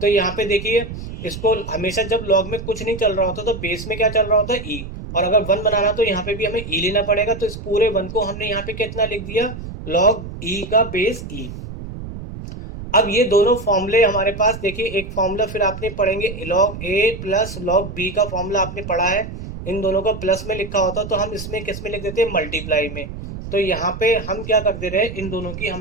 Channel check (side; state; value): right; noise; rumble, 10 dB below the sound